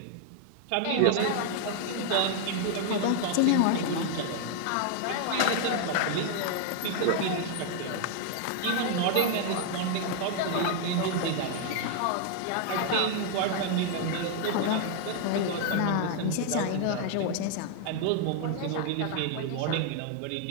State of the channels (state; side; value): different; both; correlation 0.00